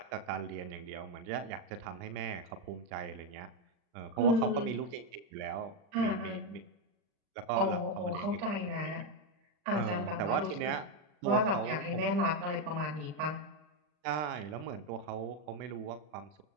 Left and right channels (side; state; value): left; late; 39 ms